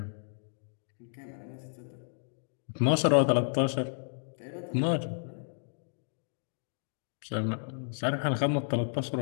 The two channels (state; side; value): silent; right; digital silence